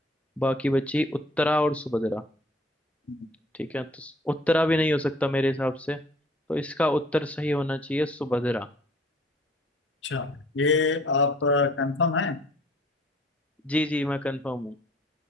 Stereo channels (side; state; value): both; normal; correlation 0.56